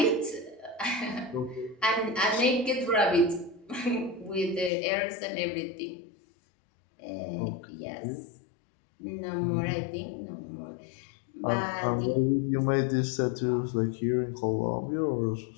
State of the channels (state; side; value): drops out; right; at 4.7 s